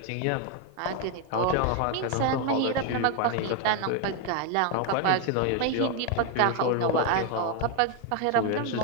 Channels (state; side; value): different; both; correlation 0.01